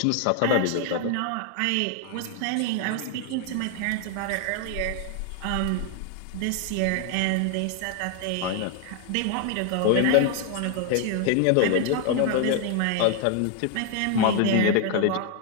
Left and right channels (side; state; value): both; different; correlation 0.00